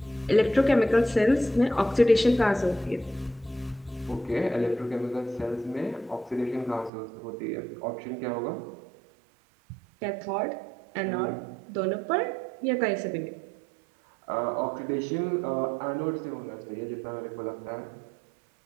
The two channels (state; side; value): drops out; left; at 6.9 s